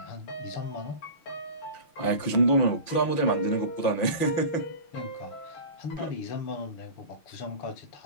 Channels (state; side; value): late; right; 5.9 ms